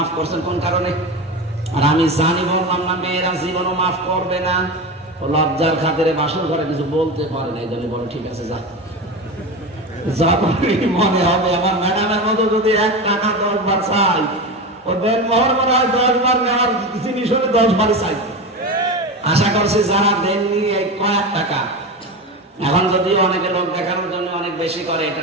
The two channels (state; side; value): normal; both; correlation 0.23